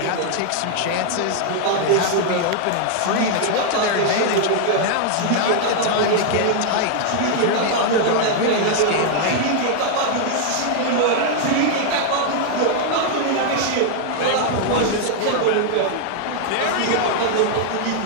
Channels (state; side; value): different; both; correlation 0.00